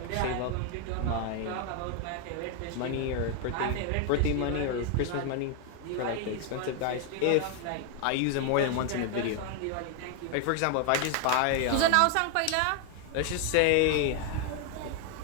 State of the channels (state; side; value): different; both; correlation 0.01